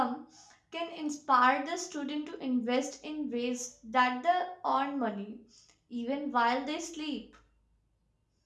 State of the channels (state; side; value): identical; both; correlation 1.00